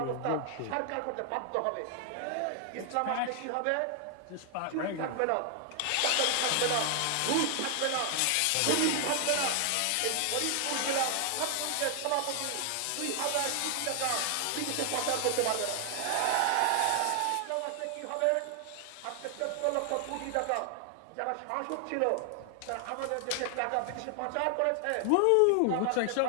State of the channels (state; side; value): different; both; correlation 0.00